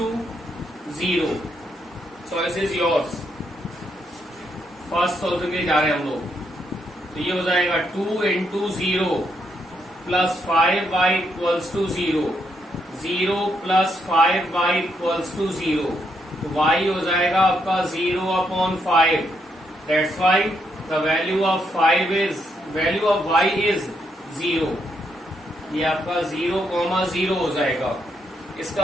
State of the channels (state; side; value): normal; both; correlation 0.77